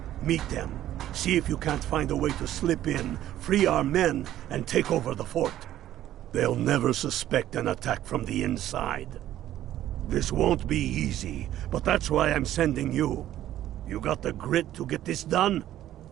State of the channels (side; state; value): left; quieter; 12.8 dB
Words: Meet them. See if you can't find a way to slip in, free our men, and take over the fort. They'll never suspect an attack from the inside. This won't be easy, but that's why I'm sending you. You got the grit to get this done?